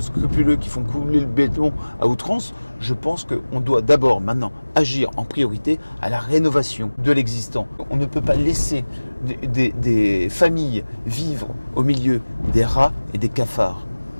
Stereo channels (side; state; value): both; inverted; correlation -1.00